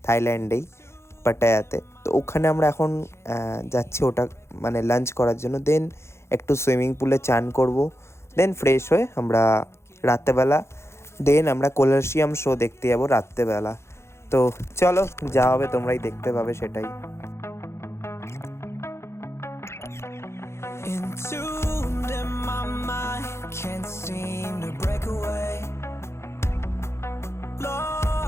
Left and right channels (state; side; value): late; right; 0.13 ms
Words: থাইল্যান্ডেই, পাটায়াতে। তো ওখানে আমরা এখন যাচ্ছি ওটা মানে লাঞ্চ করার জন্য। দেন একটু সুইমিং পুলে চান করব, দেন ফ্রেশ হয়ে আমরা রাত্রেবেলা দেন আমরা কলাসিয়াম শো দেখতে যাবো রাত্রেবেলা। তো চলো যা হবে তোমরাই দেখতে পাবে সেটাই। Entombed in my mind, can't seem to break away.